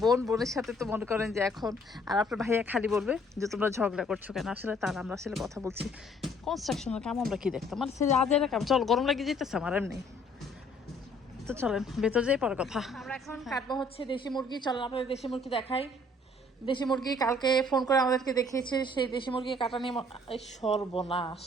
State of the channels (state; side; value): normal; both; correlation 0.60